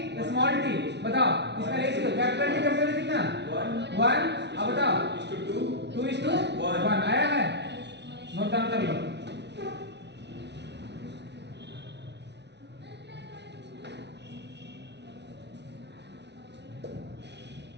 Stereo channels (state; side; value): late; left; 0.50 ms